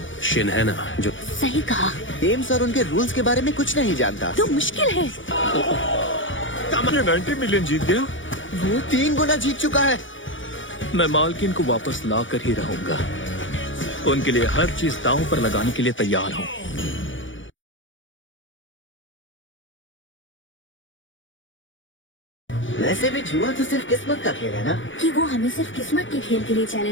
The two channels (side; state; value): right; late; 0.56 ms